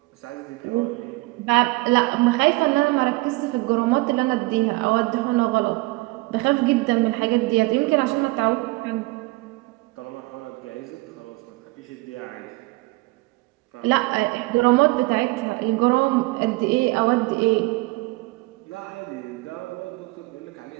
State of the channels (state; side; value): quieter; left; 23.2 dB